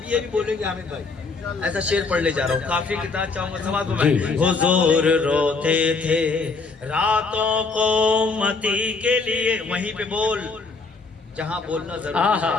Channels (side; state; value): right; quieter; 4.2 dB